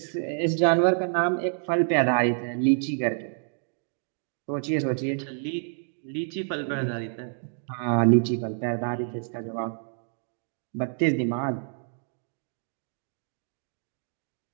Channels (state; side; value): silent; left; digital silence